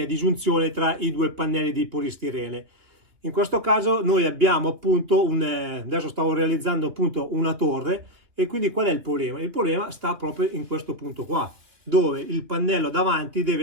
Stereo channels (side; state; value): left; late; 3.1 ms